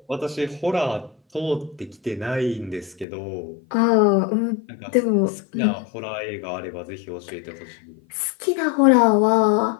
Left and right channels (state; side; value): drops out; right; at 3.1 s